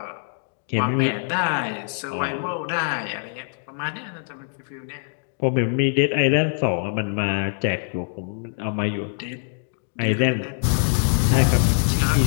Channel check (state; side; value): silent; right; digital silence